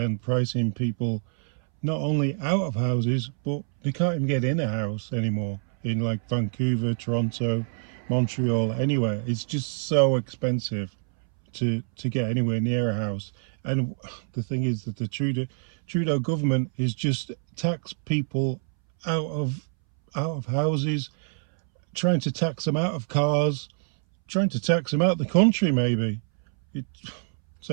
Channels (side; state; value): left; silent; 61 dB below the other